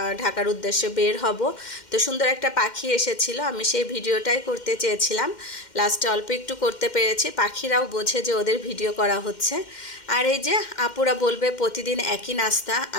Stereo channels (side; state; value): right; late; 2.1 ms